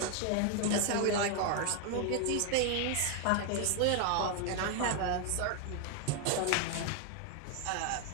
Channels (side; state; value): both; different; correlation 0.01